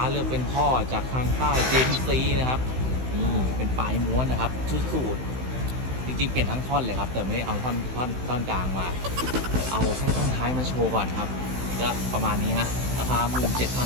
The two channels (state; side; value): late; left; 16 ms